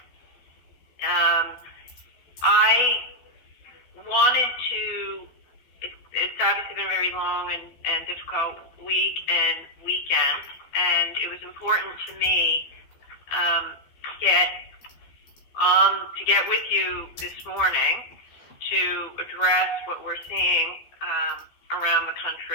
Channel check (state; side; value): late; right; 13 ms